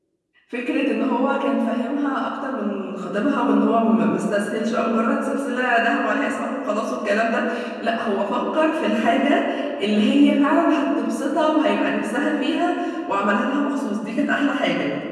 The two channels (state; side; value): identical; both; correlation 1.00